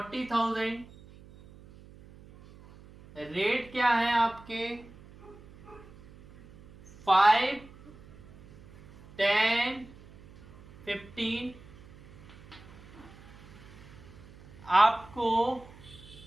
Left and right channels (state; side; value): noise; right; hum, 21 dB below the sound